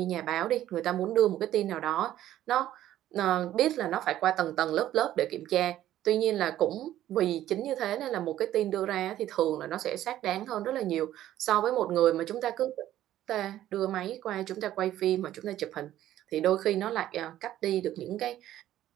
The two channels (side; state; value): left; quieter; 12.9 dB